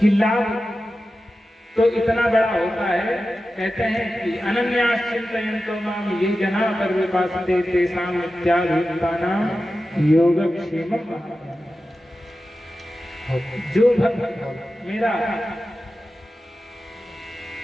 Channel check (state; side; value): normal; both; correlation 0.93